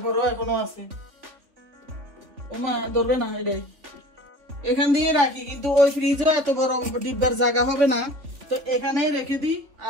এখনো আছে। ওমা ধরবে না, এটাই এখান দিয়ে রাখি, কিন্তু ওই ফ্রিজে এত বড় ডিব্বার জায়গা হবে না, তো এখানে রেখে দিই।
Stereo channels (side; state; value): left; late; 3.4 ms